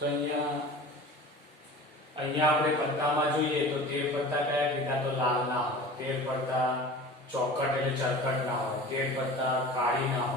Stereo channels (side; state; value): both; normal; correlation 0.38